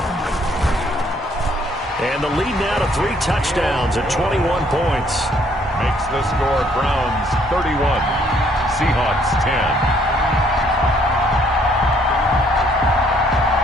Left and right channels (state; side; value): normal; both; correlation 0.65